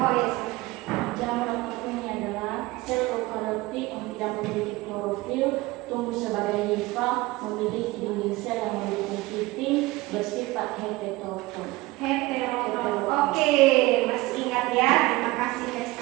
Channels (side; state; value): left; quieter; 20.5 dB